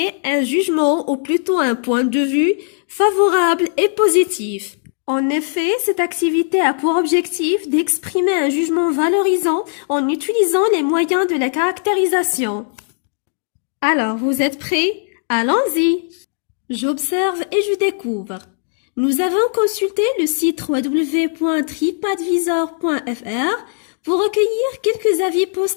un jugement ou plutôt un point de vue favorable et positif. En effet, cette activité a pour objectif d'exprimer un jugement valorisant en utilisant les moyens de la caractérisation. Alors, vous êtes prêts? Allons-y! J'observe et je découvre. Nous avons consulté le site www.tripadvisor.fr pour recueillir quelques avis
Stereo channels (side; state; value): right; silent; digital silence